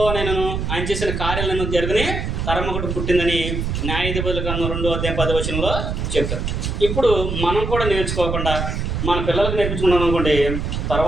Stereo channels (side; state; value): right; noise; rumble, 2 dB below the sound